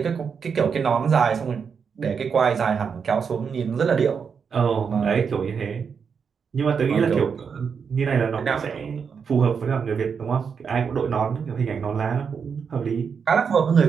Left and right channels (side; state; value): left; quieter; 6.3 dB